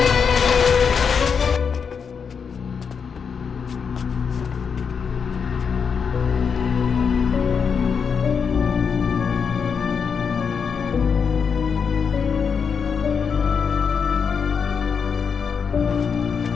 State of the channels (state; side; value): quieter; right; 6.3 dB